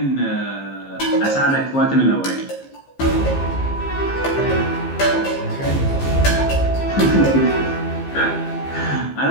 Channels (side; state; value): right; late; 15 ms